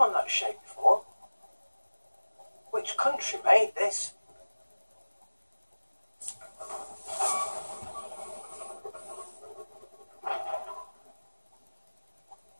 that shape before. Which country made this?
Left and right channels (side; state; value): both; inverted; correlation -1.00